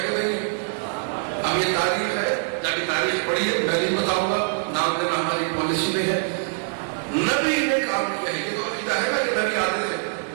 کہ نہیں ہم یہ تاریخ ہے جب تاریخ پڑھی ہے میں نہیں بتاؤں گا نام پہ نام ہماری پالیسی نہیں ہے نبی نے کام کیا ہے نا کہ نبی عادل ہے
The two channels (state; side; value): silent; left; 62 dB below the other